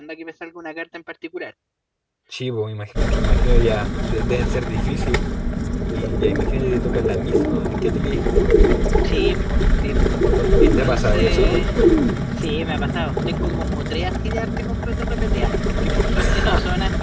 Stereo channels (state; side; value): identical; both; correlation 1.00